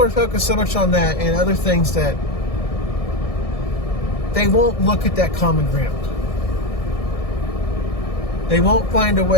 are focused so much on that and other things that they won't look at that common ground. They won't find a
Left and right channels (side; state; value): right; late; 1.6 ms